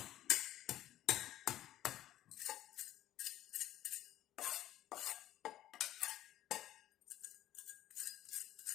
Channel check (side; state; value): right; quieter; 13.2 dB